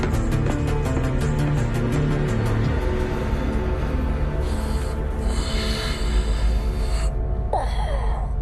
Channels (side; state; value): both; identical; correlation 1.00